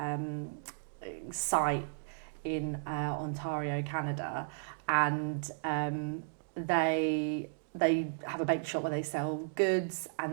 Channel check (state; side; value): silent; left; digital silence